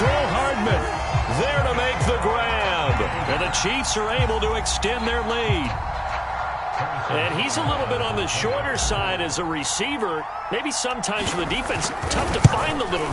Hardman there to make the grab. And the Chiefs are able to extend their lead. And he's a little bit on the shorter side as a receiver. Maybe sometimes for the defense, tough to find the little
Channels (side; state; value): both; identical; correlation 1.00